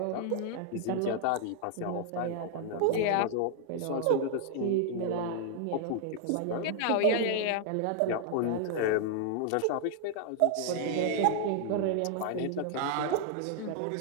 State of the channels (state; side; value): different; both; correlation 0.00